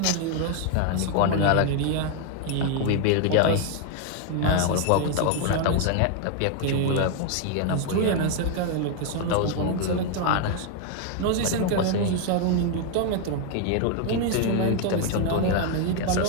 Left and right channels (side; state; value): both; different; correlation 0.01